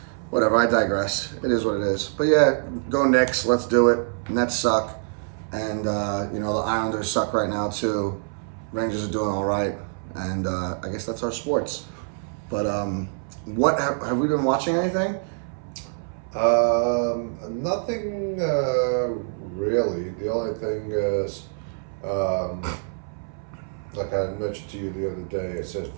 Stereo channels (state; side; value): silent; left; 60 dB below the other